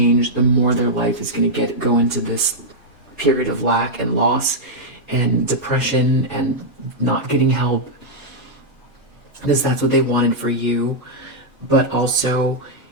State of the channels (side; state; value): both; normal; correlation -0.05